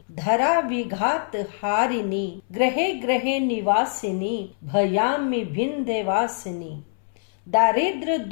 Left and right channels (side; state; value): right; silent; 63 dB below the other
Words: धरा विघात हारिणी ग्रहे ग्रहे निवासिनी भयामि विंध्यवासिनी। दारिद्र